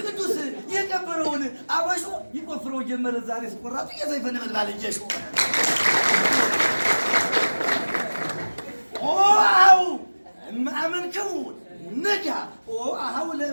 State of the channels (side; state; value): both; inverted; correlation -1.00